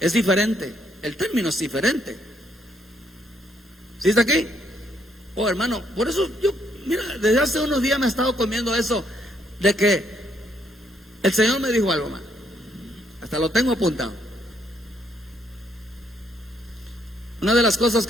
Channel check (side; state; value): both; normal; correlation 0.71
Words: diferente, el término es diferente. ¿Sí está aquí? Oh, hermano, por eso yo, mira, desde hace unos días me he estado comiendo eso de que el Señor me dijo algo, hermano. Hasta lo tengo apuntado. Una de las cosas